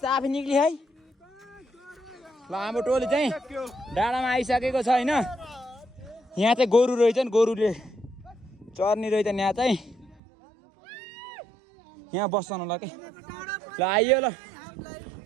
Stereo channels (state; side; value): drops out; left; at 10.2 s